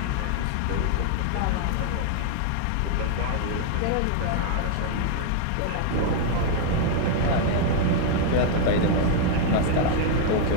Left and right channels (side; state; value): both; different; correlation 0.00